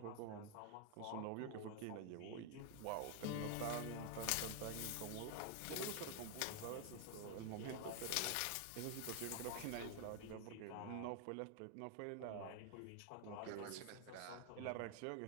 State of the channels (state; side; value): different; both; correlation 0.00